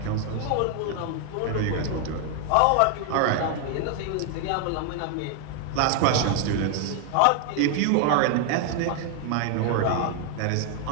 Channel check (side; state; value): both; different; correlation 0.00